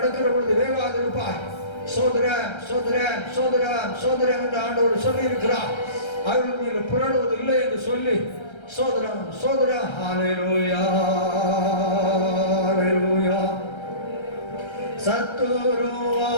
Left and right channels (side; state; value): right; late; 1.3 ms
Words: பொழுது வேகாது இருப்பாய். சோதரன் சோதரன் சோதரன் சோதரன் என்று ஆண்டவர் சொல்லி இருக்கிறார். அவர்கள் மீது புரளுவது இல்லை என்று சொல்லி சோதரன் சோதரன். ஹல்லேலூயா. ஹல்லேலூயா.